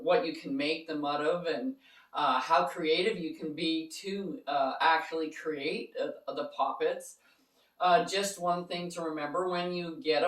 you can make them out of, and how creative you can be to actually create the poppets. Just one thing to remember when you get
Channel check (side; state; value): both; identical; correlation 1.00